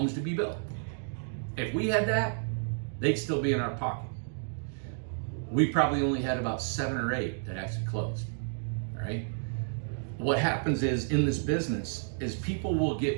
to be built. If we had that, they'd still be in our pocket. We probably only had about 7 or 8 that actually closed, all right? What happens is, in this business, is people will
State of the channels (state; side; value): silent; left; digital silence